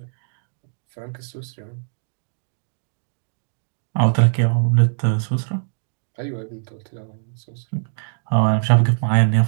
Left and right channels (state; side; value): silent; left; digital silence